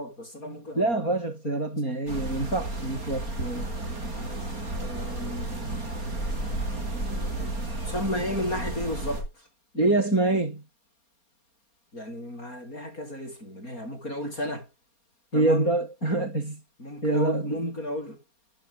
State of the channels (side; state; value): right; late; 4.3 ms